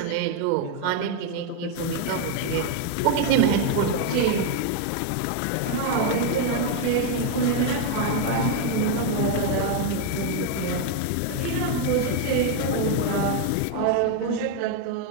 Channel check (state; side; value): different; both; correlation 0.01